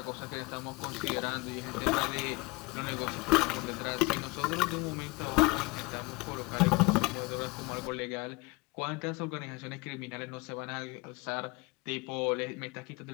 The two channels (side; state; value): right; quieter; 25.2 dB